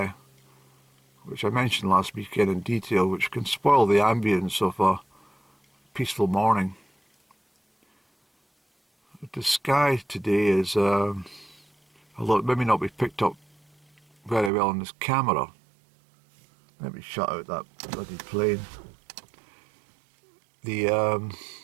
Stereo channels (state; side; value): drops out; left; at 14.5 s